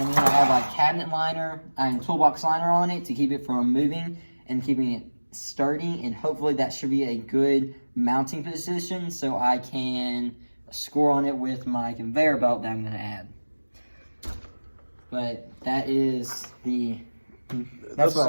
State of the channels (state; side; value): inverted; both; correlation -1.00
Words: to have a cabinet liner and toolbox liner on it to keep it from moving and keeping it sturdy, and hopefully that should be a good mounting position so I can score on it with my conveyor belt that I'm going to add. But that's what